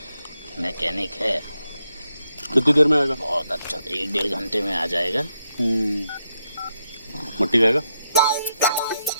मैकेनिक है। कितनी देर में आएगा? बहुत अच्छा, 1-1.5 घंटे में आ जाएगा। मट्टी खाएगा?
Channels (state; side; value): inverted; both; correlation -0.82